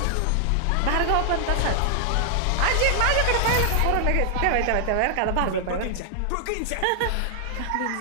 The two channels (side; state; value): both; different; correlation 0.00